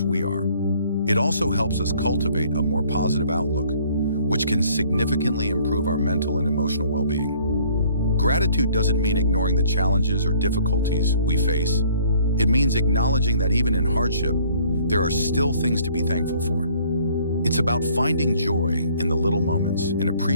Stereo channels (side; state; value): both; inverted; correlation -0.58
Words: we are. It also helps us cultivate a more positive outlook, which can significantly improve our mental and emotional well-being. Gratitude doesn't mean ignoring the challenges or difficulties we face. It means acknowledging that even in hardship, there are still things to be thankful for. It's about finding joy in the little moments and